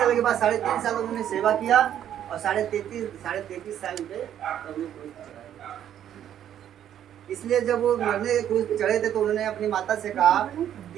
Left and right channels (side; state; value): left; quieter; 10.4 dB